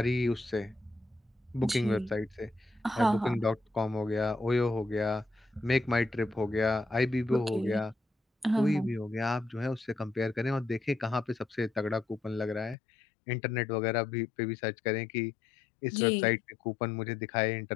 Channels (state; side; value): drops out; right; at 12.8 s